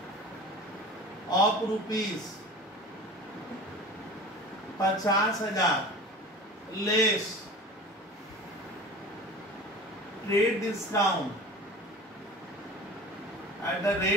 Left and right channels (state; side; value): normal; both; correlation 0.37